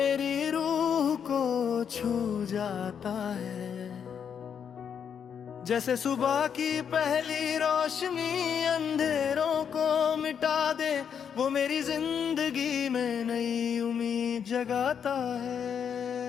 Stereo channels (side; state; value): right; quieter; 7.6 dB